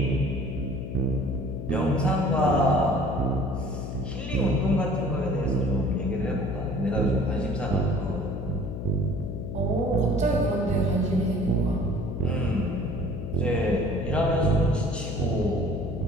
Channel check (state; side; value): noise; left; hum, 6 dB below the sound